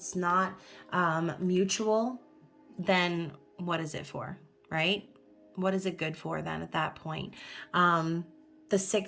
not mutual, then what is it for, right? What is it good for then at that point? The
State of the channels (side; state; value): both; identical; correlation 1.00